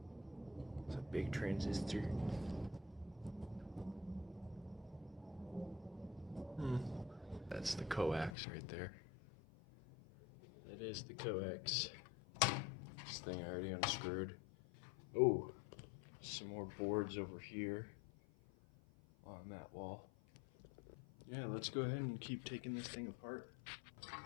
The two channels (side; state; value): right; drops out; at 8.3 s